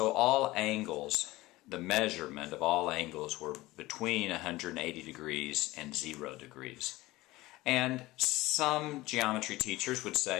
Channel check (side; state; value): right; quieter; 19.1 dB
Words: all angles, the measurement of all angles were between 180 degrees and 0 degrees. And some geometry teachers would